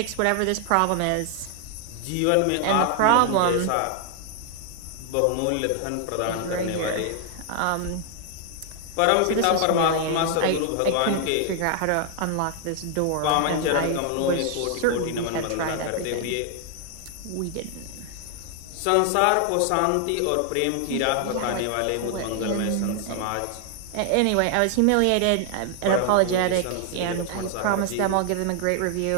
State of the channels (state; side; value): different; both; correlation 0.00